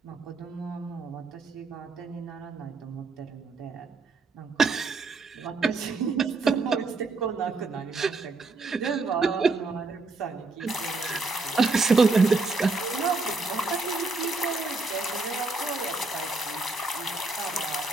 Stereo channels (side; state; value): left; quieter; 3.6 dB